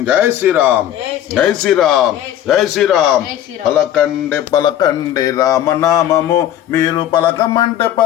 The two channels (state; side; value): quieter; right; 11.6 dB